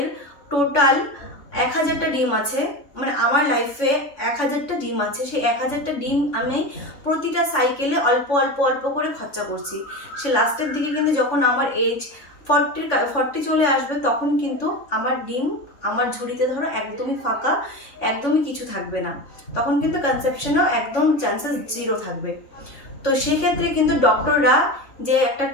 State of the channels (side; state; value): right; late; 3.5 ms